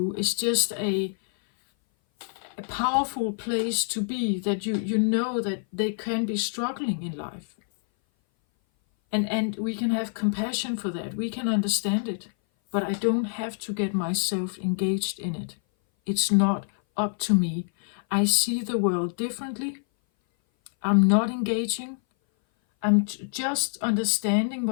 is just a powerful place to be, that you know that they can be struggling in life. And we can have compassion for that. We can understand it. But I don't have to get myself engaged in it. It's not up to me. I see the world differently. I'm not engaging. I'm just understanding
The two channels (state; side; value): silent; right; 58 dB below the other